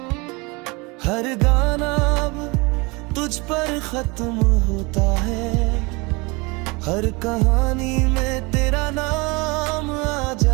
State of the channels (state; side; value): quieter; left; 26.6 dB